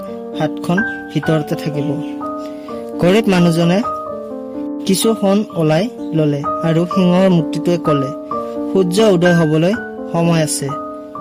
হাতখন ভিতৰতে থাকিব। গৰীব মানুহজনে কিছু সোণ ওলাই ল'লে আৰু সিংহৰ মূৰ্তিটোৱে ক'লে, সূৰ্য উদয় হ'বলৈ সময় আছে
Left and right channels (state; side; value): identical; both; correlation 1.00